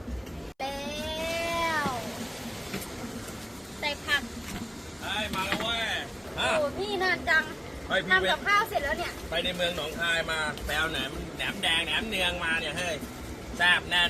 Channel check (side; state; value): both; identical; correlation 1.00